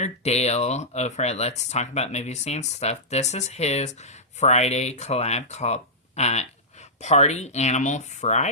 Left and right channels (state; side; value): normal; both; correlation -0.13